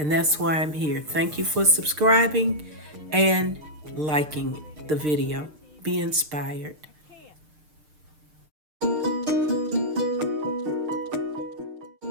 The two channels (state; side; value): late; left; 6.6 ms